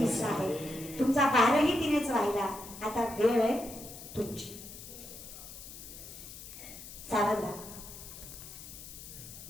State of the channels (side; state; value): left; noise; hiss, 13 dB below the sound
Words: आहे तुमचा. भारही तिनेच वाहिला. आता वेळ आहे तुमची. सावध राहा.